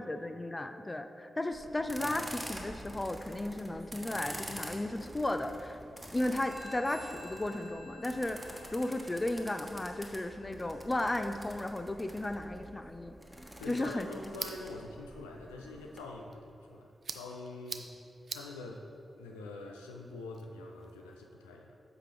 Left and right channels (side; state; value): both; normal; correlation 0.95